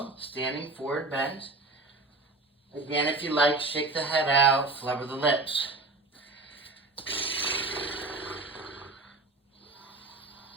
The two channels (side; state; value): left; quieter; 3.3 dB